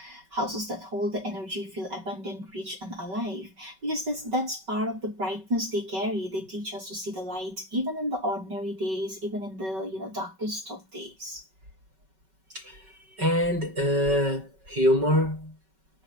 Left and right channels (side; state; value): left; late; 5.3 ms